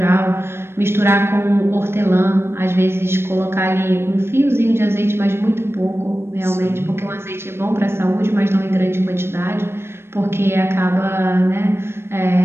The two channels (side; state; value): left; late; 0.12 ms